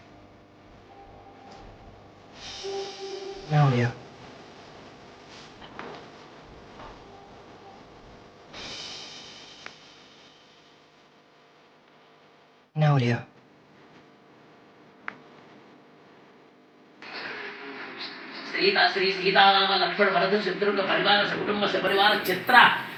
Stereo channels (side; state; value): both; identical; correlation 1.00